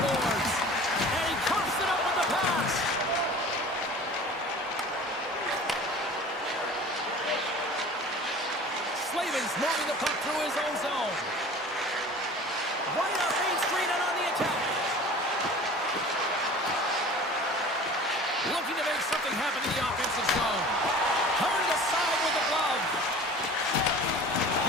boards. And he coughs it up with the pass. Slavin's moving the puck through his own zone. Right off Main Street and on the attack. Looking to make something happen in the offensive zone. Hurried aside with the glove.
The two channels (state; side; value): normal; both; correlation 0.42